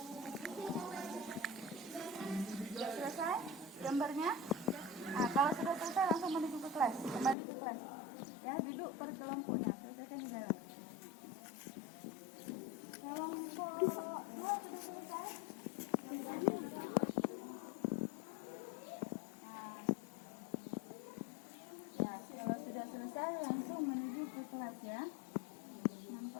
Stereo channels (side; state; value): right; drops out; at 7.4 s